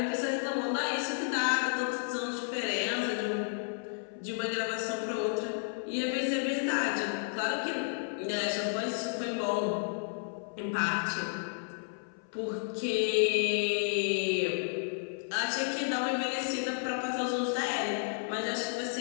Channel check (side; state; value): right; silent; 56 dB below the other